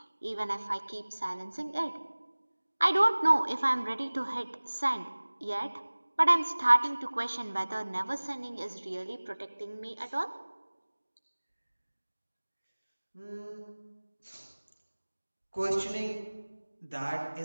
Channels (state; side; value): inverted; both; correlation -1.00